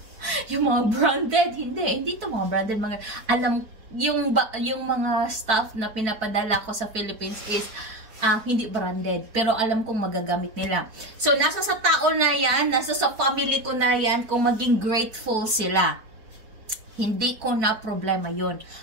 Yung mga branded, hindi to mga branded, mga, alam, yung mga stuff na pinapadala ko sa Philippines is, hindi branded. Pero alam kong magagamit nila. So, nasa sa tao na yan, nasa sa family ko na yan, kung maging grateful sila. Hindi ko na problema yun.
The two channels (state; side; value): late; left; 4.6 ms